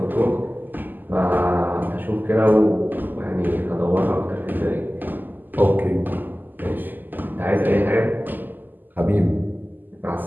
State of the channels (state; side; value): late; left; 0.088 ms